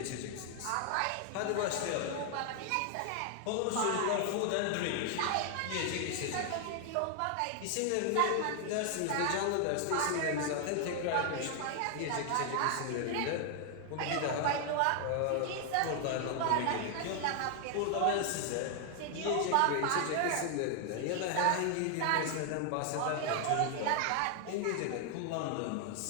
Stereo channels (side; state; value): both; different; correlation 0.00